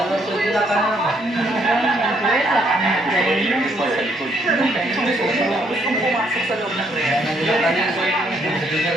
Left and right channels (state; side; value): normal; both; correlation 0.70